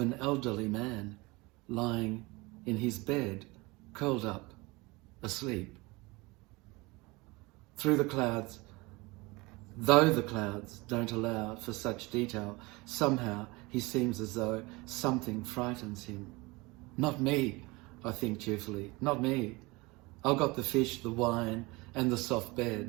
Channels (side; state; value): left; quieter; 23.9 dB